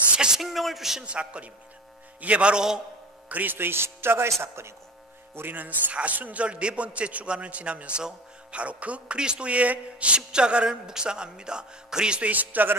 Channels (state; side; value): normal; both; correlation 0.34